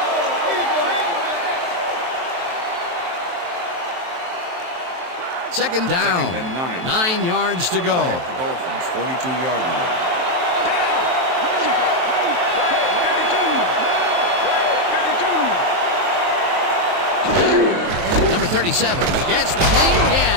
Second down. Second and 9 yards to go. The Dolphins, 42-yard line. Number 37 gets the call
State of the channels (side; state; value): left; late; 23 ms